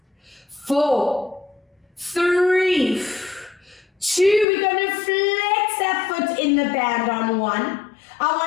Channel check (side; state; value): right; drops out; at 4.5 s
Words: 4, 3, 2, we're going to flex that foot in the band on 1. I